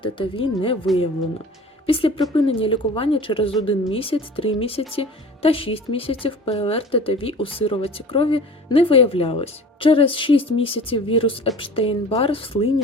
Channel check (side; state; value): both; normal; correlation 0.41